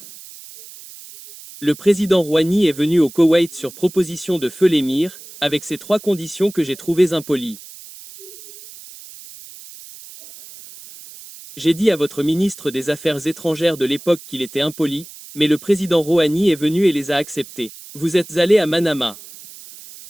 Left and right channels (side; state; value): right; noise; hiss, 17 dB below the sound